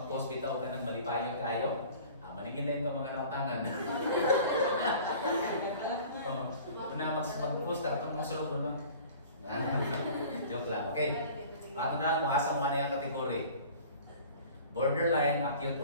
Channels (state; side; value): inverted; both; correlation -0.45